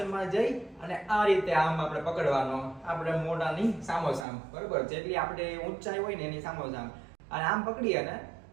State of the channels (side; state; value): left; drops out; at 4.2 s